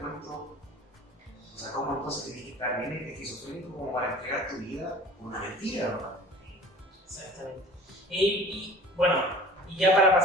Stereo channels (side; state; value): both; normal; correlation 0.44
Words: o sea, ¿cómo entonces tenías que estar bien esquizofrénico como para entregar tu vida por una mentira, ¿verdad? Exactamente. Y bueno, y ya para